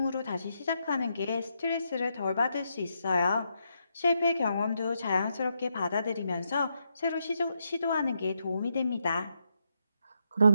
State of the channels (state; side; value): inverted; both; correlation -0.81